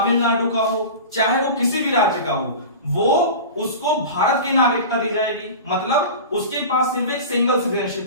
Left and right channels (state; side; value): inverted; both; correlation -0.32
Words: का हो, चाहे वो किसी भी राज्य का हो, वो उसको भारत की नागरिकता दी जाएगी। मतलब उसके पास सिर्फ एक सिंगल